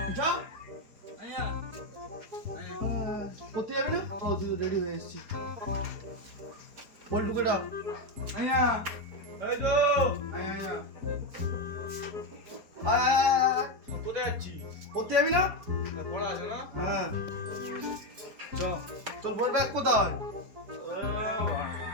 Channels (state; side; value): late; left; 4.5 ms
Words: কোথায় যাবি না? ও তুই রেডি হয়ে এসেছি। বলটুকে ডাক। কোথায় যাচ্ছিস? পড়তে যাবি না? পড়া আছে না? হ্যাঁ তোর বই ব্যাগ কোথায়?